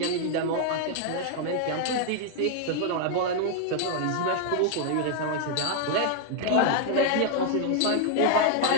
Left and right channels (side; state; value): both; different; correlation 0.00